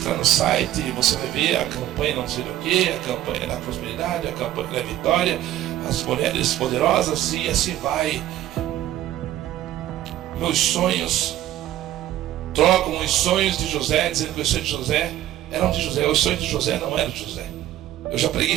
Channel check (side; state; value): left; quieter; 13.1 dB